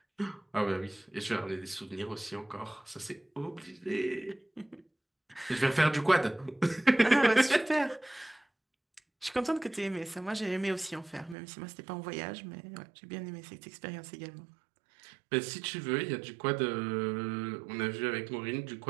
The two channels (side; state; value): left; drops out; at 11.4 s